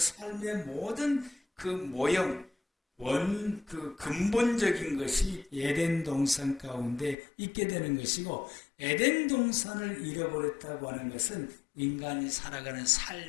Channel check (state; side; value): drops out; right; at 7.2 s